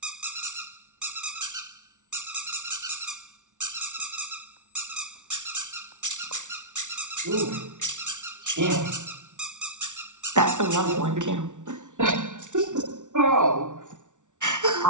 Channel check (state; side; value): late; left; 0.86 ms